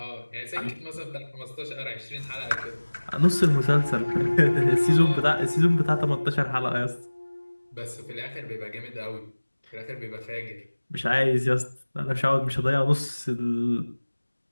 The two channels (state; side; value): inverted; both; correlation -1.00